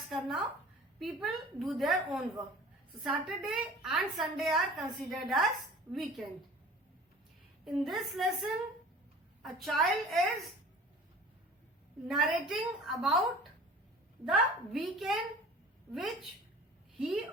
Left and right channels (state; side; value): normal; both; correlation 0.45